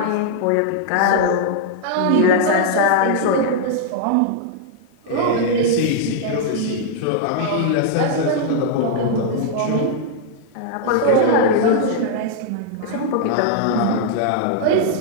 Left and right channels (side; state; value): both; different; correlation -0.01